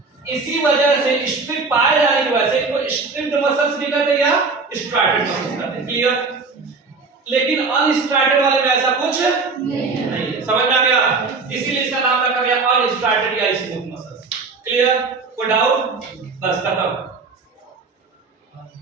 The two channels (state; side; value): quieter; left; 4.3 dB